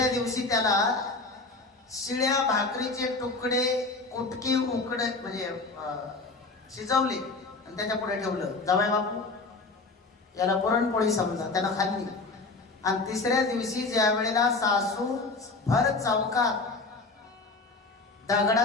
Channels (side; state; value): right; quieter; 3.6 dB